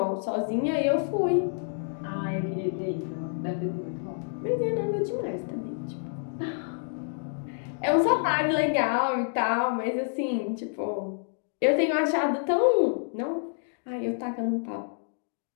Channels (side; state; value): right; silent; digital silence